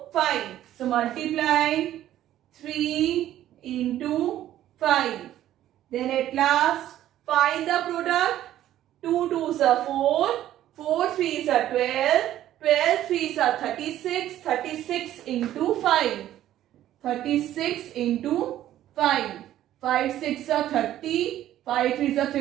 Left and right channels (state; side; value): quieter; left; 12.7 dB